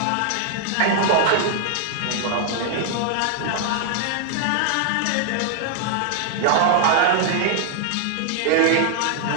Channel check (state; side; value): different; both; correlation -0.01